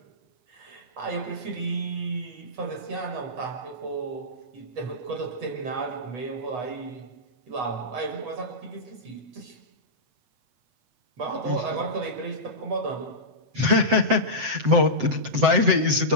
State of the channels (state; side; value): late; left; 7.7 ms